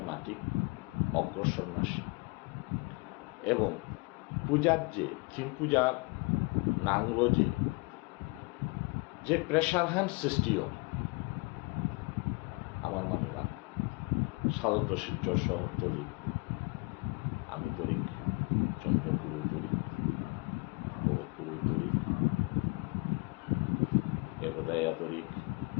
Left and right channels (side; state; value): right; quieter; 28.4 dB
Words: এমাটিক অগ্রসর নাশী এবং পূজার থিম পূজার নাংলো যে প্রেশার হ্যান্ড সৃষ্টিও আমার মানুষরা সাধারণত শিলচর শহরতলি আমি তরিক চন্দ্রপুর তরিক ভরতপুর তরিক এগোদায়া তরিক